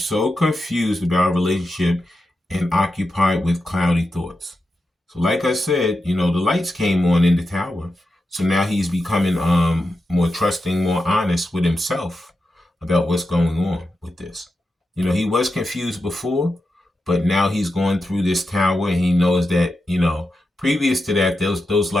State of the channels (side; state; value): both; normal; correlation 0.89